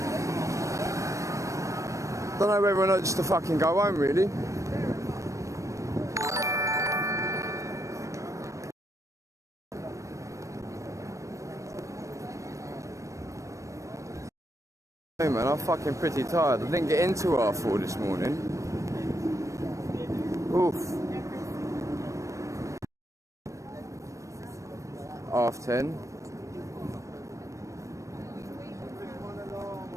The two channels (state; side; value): late; left; 0.15 ms